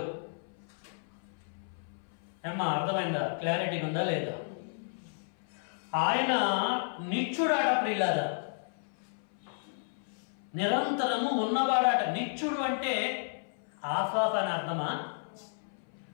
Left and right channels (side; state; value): right; silent; 56 dB below the other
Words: ఏమ్మా అర్థమైందా? క్లారిటీ ఉందా లేదా? ఆయన నిత్యుడాట ప్రియులారా, నిరంతరము ఉన్నవాడాట. నిత్యుడు అంటే ఆఫాఫ్ అని అర్థమా?